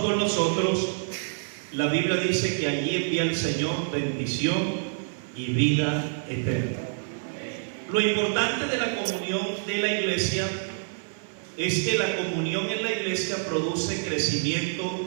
con los otros, la Biblia dice que allí envía el Señor bendición y vida eterna. Lo importante de la comunión de la iglesia es que la comunión en la iglesia produce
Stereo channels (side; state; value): left; silent; 60 dB below the other